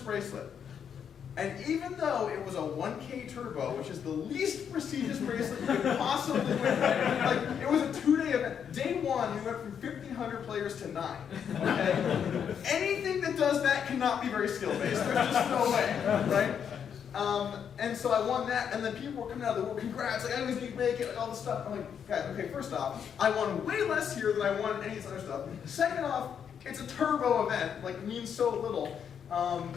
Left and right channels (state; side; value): quieter; right; 7.8 dB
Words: bracelet. And even though it was a 1K turbo, which is the least prestigious bracelet you could possibly win, like it was a 2-day event. Day 1, we went from 1,500 players to 9. Okay? Anything that does that cannot be very skill-based. There's just no way, right? And so I won that, and then people were coming out of the world, congrats, like I always need to make it, like all this stuff. I'm like, guys, okay, first off, I won way less here than I won any of this other stuff. Second off, it's a turbo event, like it means so little.